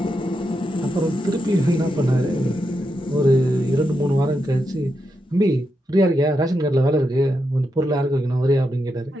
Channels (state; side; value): normal; both; correlation 0.85